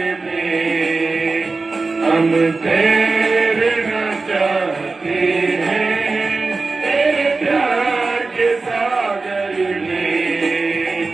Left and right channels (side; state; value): left; quieter; 3.8 dB